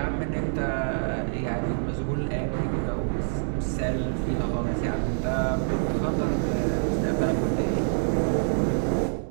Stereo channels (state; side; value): silent; left; digital silence